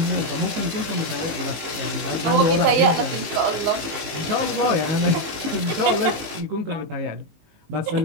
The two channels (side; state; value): left; late; 19 ms